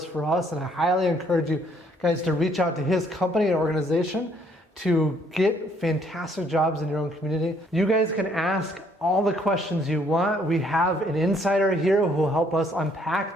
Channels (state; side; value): normal; both; correlation 0.66